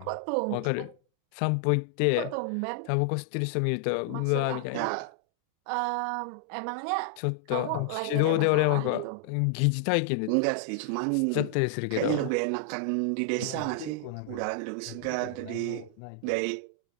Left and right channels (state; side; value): different; both; correlation -0.01